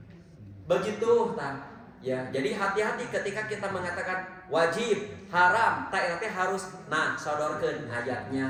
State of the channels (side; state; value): both; identical; correlation 1.00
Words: Begitu tah. Ya, jadi hati-hati ketika kita mengatakan wajib, haram, tak harus sodorkeun